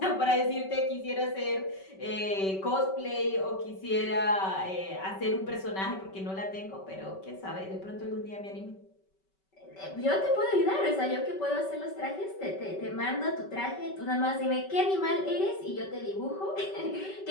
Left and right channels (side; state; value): right; late; 5.2 ms